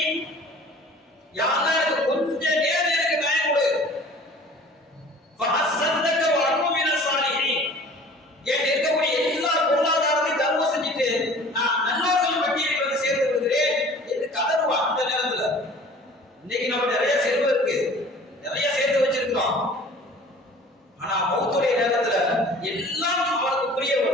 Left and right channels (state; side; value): normal; both; correlation 0.47